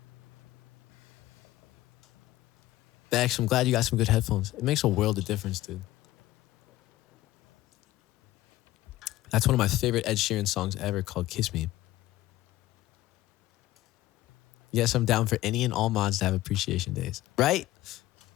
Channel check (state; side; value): quieter; right; 16.1 dB